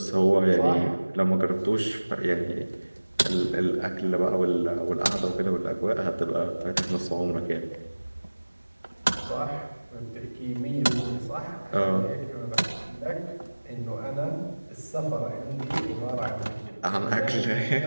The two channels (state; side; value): inverted; both; correlation -1.00